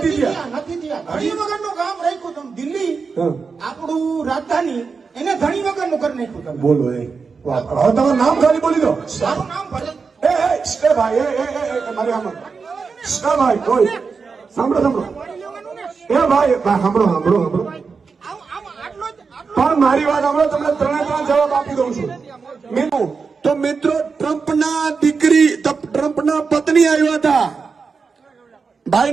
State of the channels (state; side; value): quieter; left; 5.1 dB